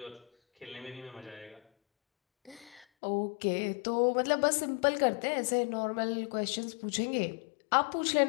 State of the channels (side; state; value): right; drops out; at 2.9 s